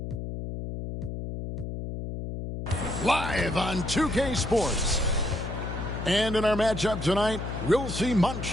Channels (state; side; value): noise; left; hum, 6 dB below the sound